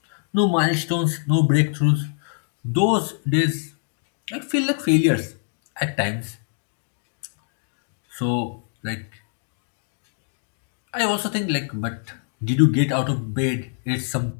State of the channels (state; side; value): silent; right; digital silence